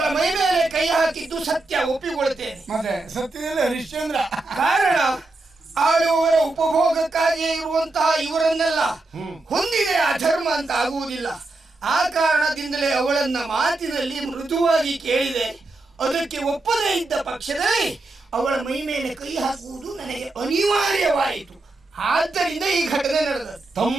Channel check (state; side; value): quieter; left; 3.0 dB